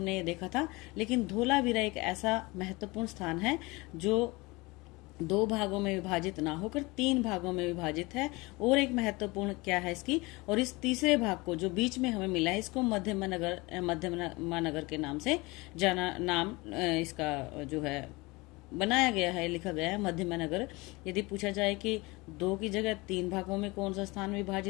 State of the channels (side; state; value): right; quieter; 23.9 dB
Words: ये देखा था। लेकिन धोलावीरा एक ऐसा महत्वपूर्ण स्थान है जो 2 भागों में विभाजित ना होकर 3 भागों में विभाजित है। और एक महत्वपूर्ण क्या है इसकी, और इस तीसरे भाग को जो बीच में हमें मिला है इसको मध्यमा नगर के नाम से नाम इसका जो है बनाया गया है, लिखा गया है मध्यमा नगर। यदि पूछा जाए कि 2 की जगह 3 भागों में कौन सा स्थान